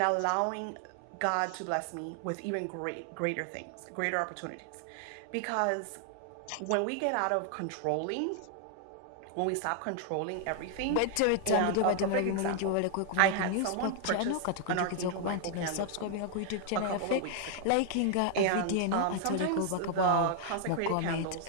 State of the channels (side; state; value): both; different; correlation 0.00